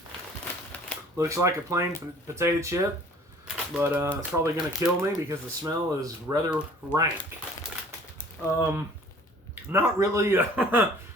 Looks like a plain potato chip, but it's probably going to kill me because the smell is rather rank. Not really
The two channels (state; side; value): normal; both; correlation 0.51